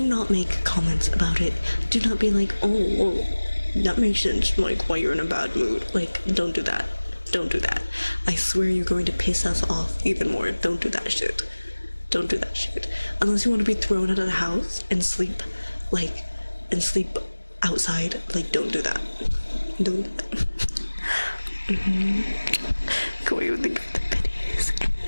not make comments about it. Do not be like, oh, that makes sense, like, why you're in a bad mood. Like, don't do that. I swear you're going to piss us off even more. Don't do that shit. Unless you want to be thrown out of the house and sleep outside, like, don't do that. Go away with the pitties and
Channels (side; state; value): both; inverted; correlation -1.00